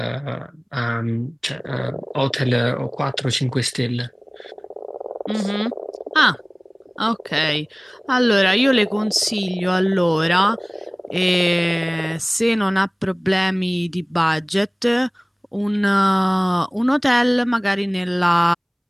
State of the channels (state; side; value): identical; both; correlation 1.00